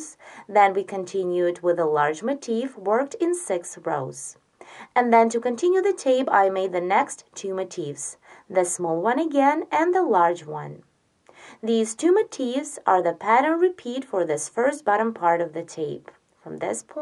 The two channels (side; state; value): both; identical; correlation 1.00